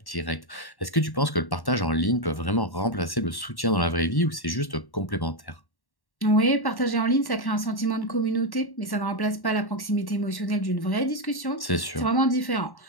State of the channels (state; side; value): late; right; 1.1 ms